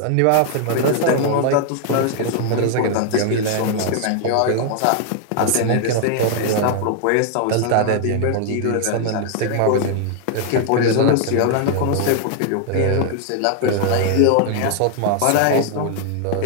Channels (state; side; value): different; both; correlation 0.00